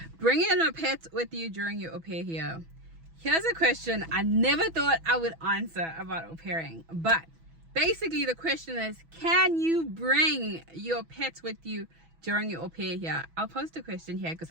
Bringing a pet with you during your au pair here. Here's a question I never thought I would answer about au pairing, but basically the question is, can you bring your pets with you during your au pair here? I'll post a question here because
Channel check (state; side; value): late; left; 6.1 ms